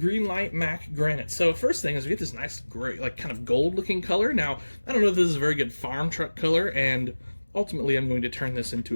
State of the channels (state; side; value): inverted; both; correlation -1.00